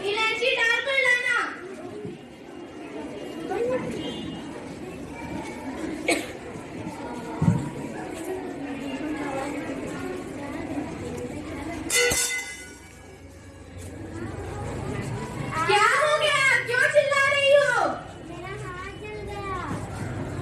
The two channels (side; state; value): both; identical; correlation 1.00